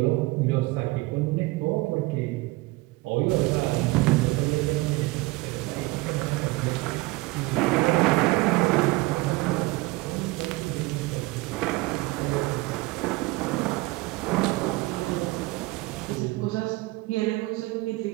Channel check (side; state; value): left; quieter; 21.7 dB